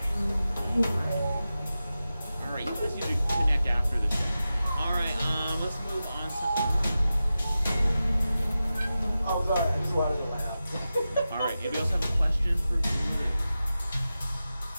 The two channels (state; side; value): inverted; both; correlation -0.93